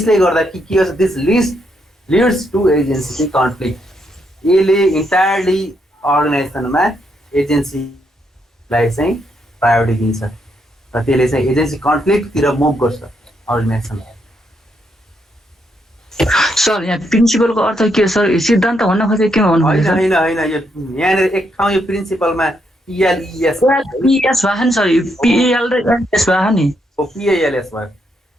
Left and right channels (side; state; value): both; normal; correlation 0.77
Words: गर्दा के गर्छ this leads to agency conflict. यसले इन्टायरली अर्गनाइजेसनमा एजेन्सीलाई चाहिँ प्रायोरिटी दिन्छ र त्यसले चाहिँ एजेन्सी कन्फ्लिक्टतिर मुभ गर्छ अर्गनाइजेसनलाई. सर यहाँ प्रिन्सिपलको अर्थ के हो सर? सिद्धान्त भन्न खोजेको के भन्नु होइन होइन होइन यो यहाँनिर एक ठाउँ यो प्रिन्सिपलमा पिएलइएस पिएस भयो नि सर. पिएल र एस भयो नि. पिएलएस भयो